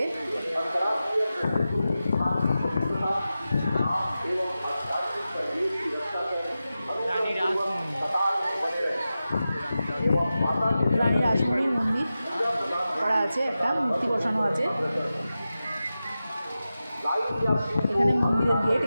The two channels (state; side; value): inverted; both; correlation -0.93